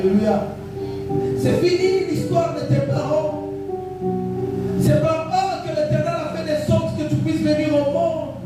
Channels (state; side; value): identical; both; correlation 1.00